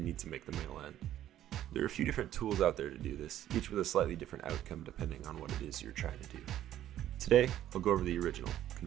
need to make the male end, there are a few different tools out there to do this, each with a slightly different outcome depending on what it is you're trying to do. Today, I'll go over the original,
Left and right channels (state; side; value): quieter; left; 12.2 dB